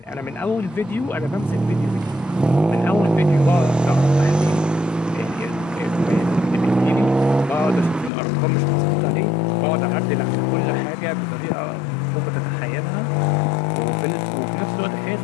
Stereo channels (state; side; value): drops out; right; at 8.1 s